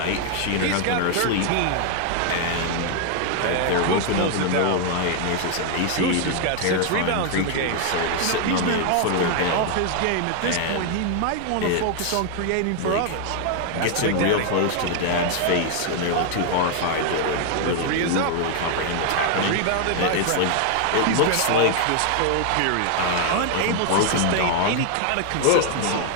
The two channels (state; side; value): different; both; correlation 0.00